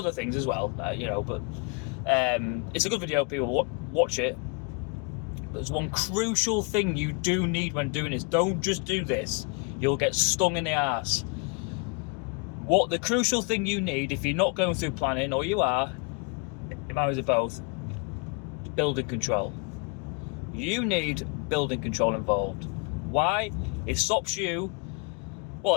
things as well, you know, but it's a good video, people watch it. But there's one crucial thing you do need when doing this. Don't just do this, you'll get stung in the arse. What the crucial thing you need, if you're not going through planning, or you are, it matters of both, building control. You need building control involved. Why? It stops you,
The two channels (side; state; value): right; quieter; 30.9 dB